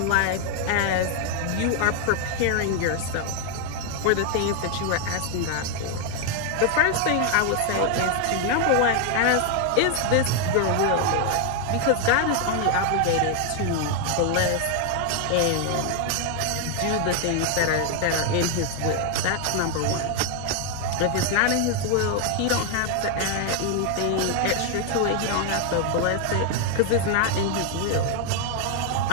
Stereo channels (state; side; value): different; both; correlation 0.00